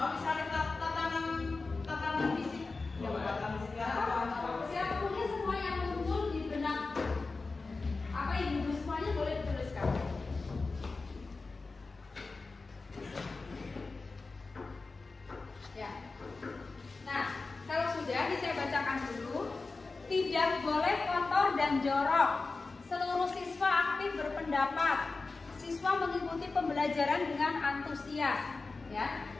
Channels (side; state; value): right; quieter; 3.8 dB